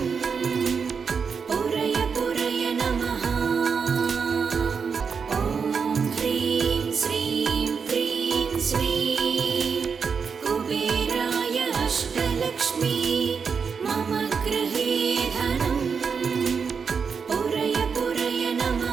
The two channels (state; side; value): quieter; left; 5.9 dB